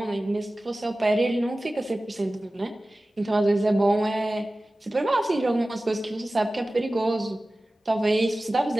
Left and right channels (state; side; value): normal; both; correlation 0.96